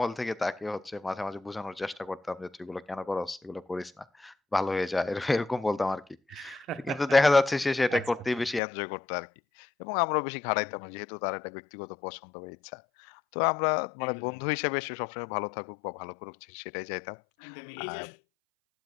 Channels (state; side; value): drops out; right; at 8.6 s